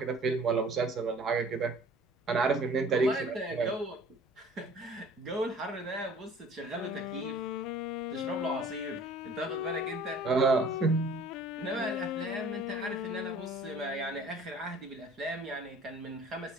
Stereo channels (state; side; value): normal; both; correlation 0.49